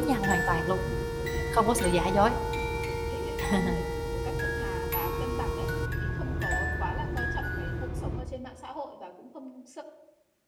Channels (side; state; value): both; identical; correlation 1.00